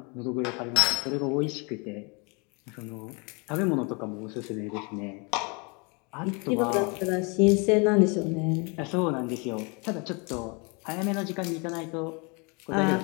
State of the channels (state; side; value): quieter; right; 31.7 dB